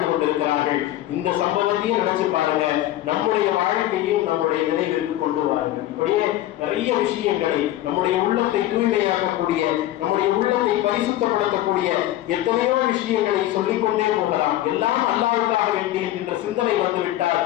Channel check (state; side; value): quieter; right; 14.3 dB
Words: கொண்டிருக்கிறார்கள். இந்த சம்பவத்தையும் நினைச்சு பாருங்க, நம்முடைய வாழ்க்கையும் நம்முடைய நினைவிற்கு கொண்டு வாருங்கள். இப்படியே நிறைய விஷயங்களை, நம்முடைய உள்ளத்தை தூய்மையாக்கக்கூடிய, நம்முடைய உள்ளத்தை பரிசுத்தப்படுத்தக்கூடிய எத்தனையோ விஷயங்களை சொல்லிக்கொண்டே போகலாம். எல்லாம் அல்லாஹ்வுக்காக வேண்டி என்கின்ற சிந்தனை வந்துவிட்டால்